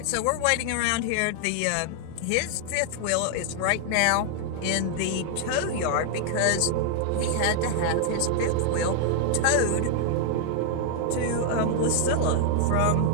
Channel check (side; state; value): both; different; correlation 0.00